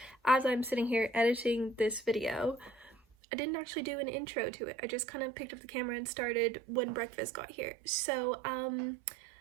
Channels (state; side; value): drops out; left; at 3.0 s